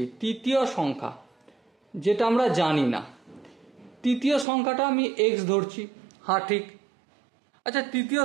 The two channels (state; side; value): drops out; left; at 4.5 s